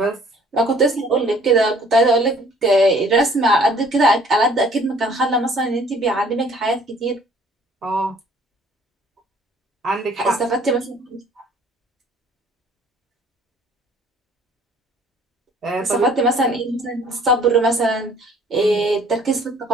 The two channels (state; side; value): normal; both; correlation 0.56